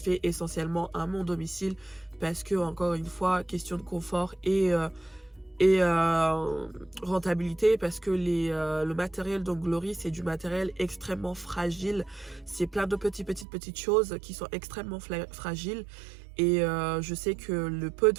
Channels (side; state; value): left; drops out; at 13.5 s